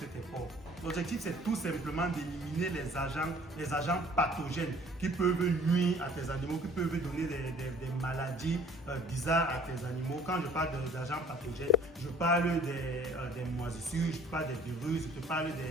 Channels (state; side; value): normal; both; correlation 0.53